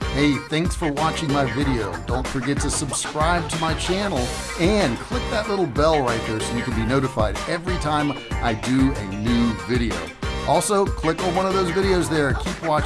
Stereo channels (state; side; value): identical; both; correlation 1.00